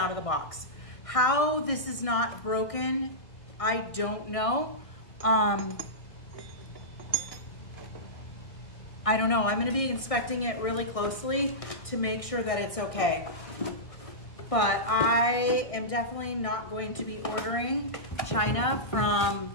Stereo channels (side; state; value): right; late; 1.6 ms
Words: of the box. How this is not broken, I don't know. I don't know. I'm going to be inspecting it really closely to make sure that it's okay. But I am definitely not going to be ordering China